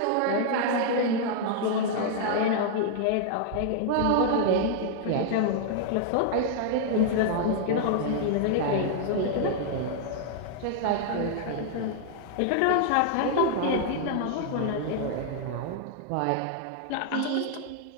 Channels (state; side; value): different; both; correlation -0.01